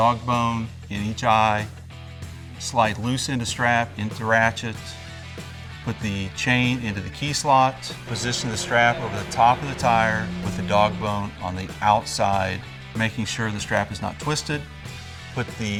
bone in each eye, slide loose end of strap into ratchet, put the chain into the key slot, position the strap over the top of the tire with the dog bone on the outside, making sure the strap is not twisted. Put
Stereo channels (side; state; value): both; identical; correlation 1.00